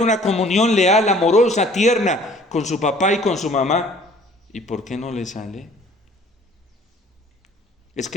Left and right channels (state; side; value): normal; both; correlation 0.54